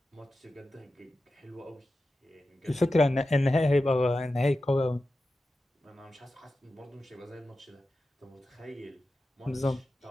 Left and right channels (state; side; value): normal; both; correlation 0.92